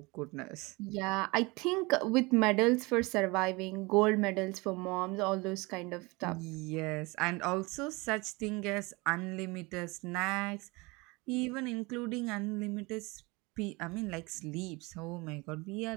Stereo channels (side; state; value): left; quieter; 25.1 dB